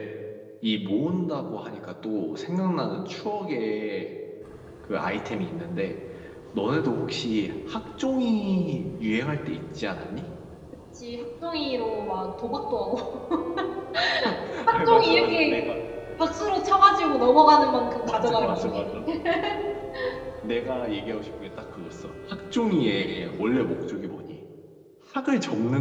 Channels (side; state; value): both; identical; correlation 1.00